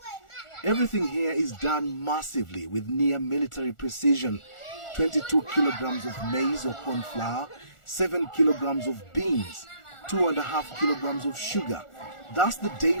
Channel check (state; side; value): late; right; 1.4 ms